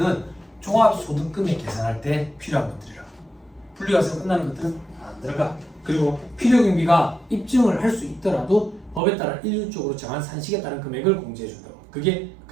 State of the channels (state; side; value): drops out; left; at 9.0 s